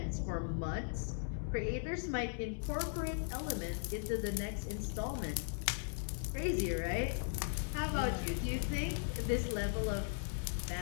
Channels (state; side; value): silent; right; digital silence